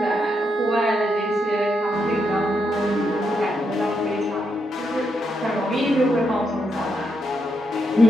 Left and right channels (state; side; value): normal; both; correlation 0.80